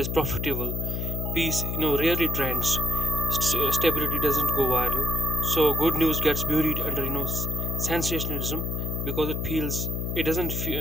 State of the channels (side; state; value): left; noise; hum, 2 dB below the sound